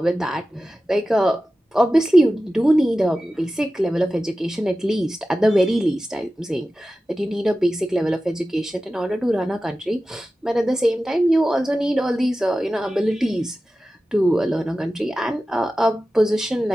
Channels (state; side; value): normal; both; correlation 0.94